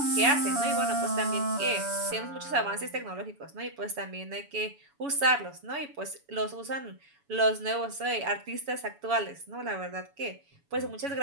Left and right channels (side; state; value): left; late; 7.1 ms